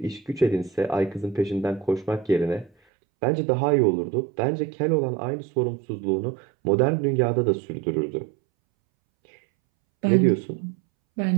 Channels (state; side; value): drops out; left; at 2.7 s